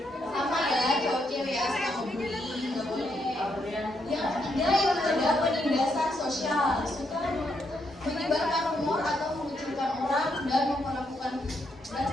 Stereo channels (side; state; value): both; normal; correlation 0.78